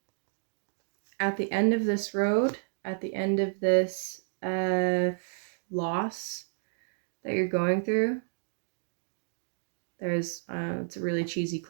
at the end of this road, at the end of this loss that you're going through, there's it's a really cheesy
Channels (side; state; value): left; silent; digital silence